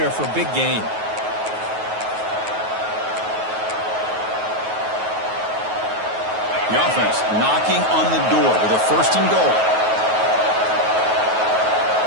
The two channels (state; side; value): late; left; 9.3 ms